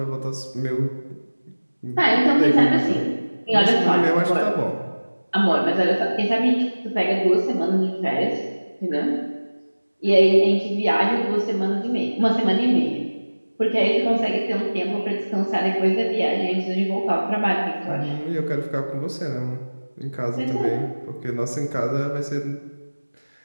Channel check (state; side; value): inverted; both; correlation -1.00